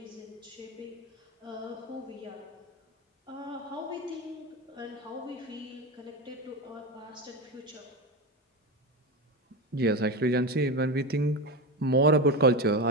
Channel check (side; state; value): both; normal; correlation 0.19